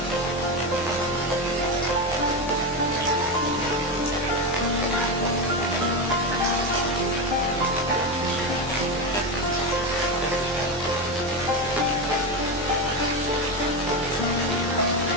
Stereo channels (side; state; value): right; noise; hum, 17 dB below the sound